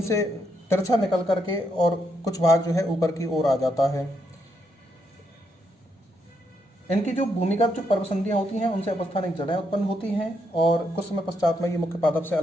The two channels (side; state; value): both; normal; correlation 0.78